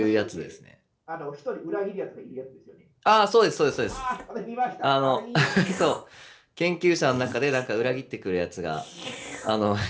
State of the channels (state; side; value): identical; both; correlation 1.00